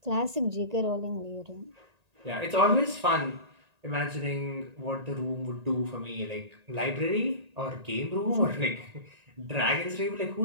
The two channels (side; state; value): left; late; 1.8 ms